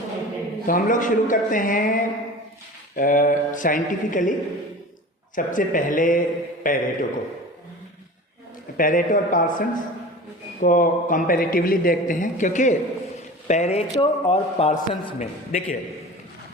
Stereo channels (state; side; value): normal; both; correlation 0.36